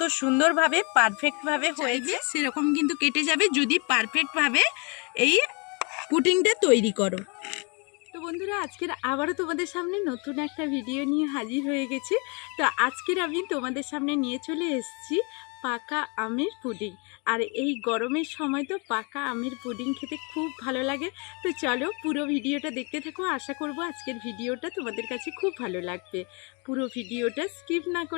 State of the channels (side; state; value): right; quieter; 32.4 dB